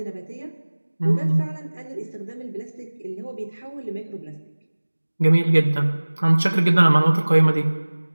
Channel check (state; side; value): inverted; both; correlation -1.00